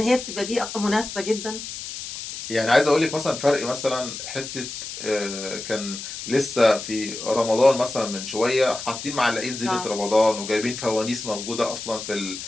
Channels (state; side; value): noise; left; hiss, 9 dB below the sound